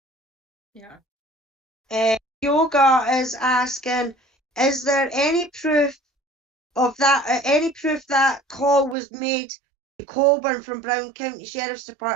Yeah. Yoga is asking, is there any proof of that, any proof that call was made to Colburn from Brown County Sheriff's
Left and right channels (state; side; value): drops out; left; at 9.0 s